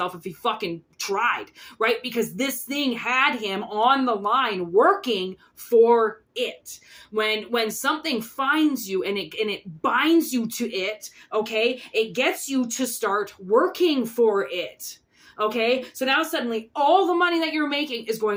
if he fucking tried, right? Because this thing had him on the line working for it. When something finds you and it binds you to it, okay, it gets you to start working for it. Okay, so now suddenly all the money that you're making is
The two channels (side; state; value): both; identical; correlation 1.00